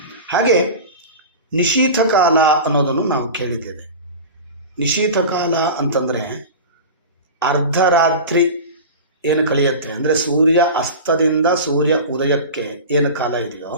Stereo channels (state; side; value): inverted; both; correlation -0.30